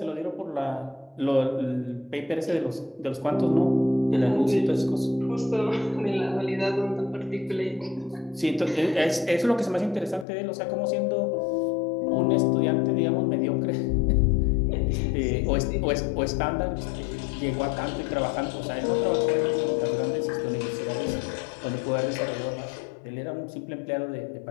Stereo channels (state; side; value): drops out; right; at 10.2 s